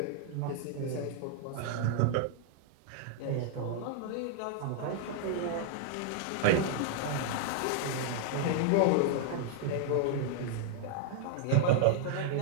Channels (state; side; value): different; both; correlation 0.00